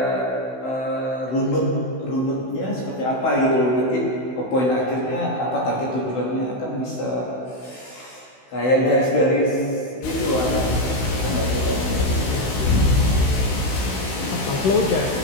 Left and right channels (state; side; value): late; right; 16 ms